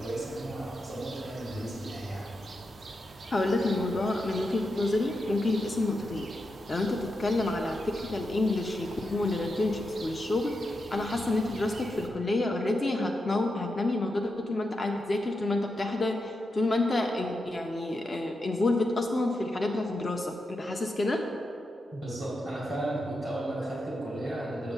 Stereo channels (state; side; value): normal; both; correlation 0.87